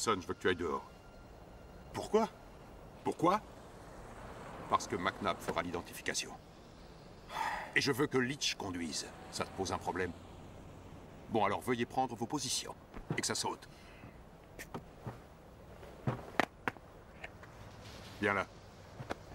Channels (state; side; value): identical; both; correlation 1.00